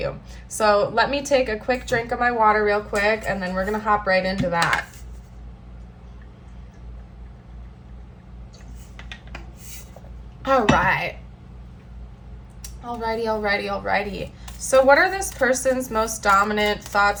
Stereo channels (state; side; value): identical; both; correlation 1.00